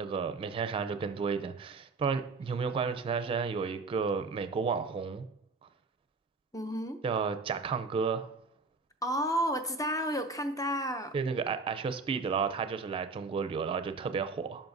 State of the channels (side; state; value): left; quieter; 3.9 dB